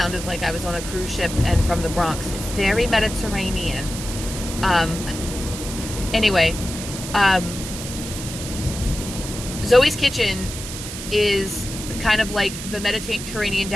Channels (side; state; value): right; noise; hiss, 9 dB below the sound